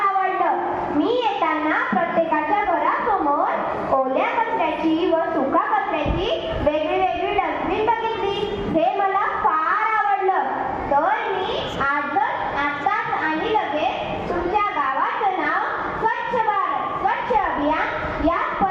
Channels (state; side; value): identical; both; correlation 1.00